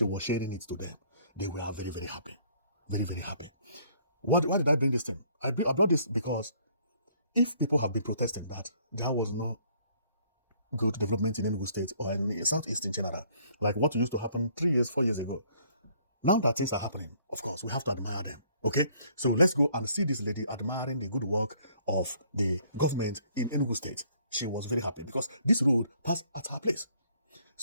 was sharing it to them. They were very, very happy. Very, very happy. Why did I bring this thing? I brought this because if people have been protesting that there was no good development in Enugu State or in Southeast in general, like what used to happen 3 years, 4 years ago. Now that things are happening, of course, we have to admire them. Okay? So let's go and see this lady admiring the good work of the government in Enugu State. She was very happy because this road passed at her place.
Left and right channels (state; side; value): inverted; both; correlation -0.62